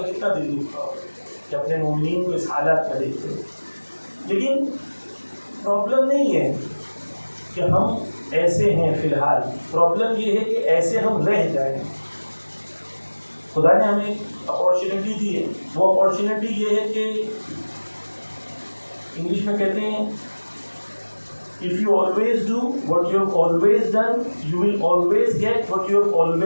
کتنا دل دکھتا ہوگا کہ اپنے مومنین کو اس حالات میں دیکھتے ہیں. لیکن پرابلم نہیں ہے کہ ہم ایسے ہیں فی الحال، پرابلم یہ ہے کہ ایسے ہم رہ جائیں. خدا نے ہمیں اپارچونیٹی دی ہے. وہ اپارچونیٹی یہ ہے کہ انگلش میں کہتے ہیں if you always do what you have always done, you will always get what you have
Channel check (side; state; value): both; inverted; correlation -1.00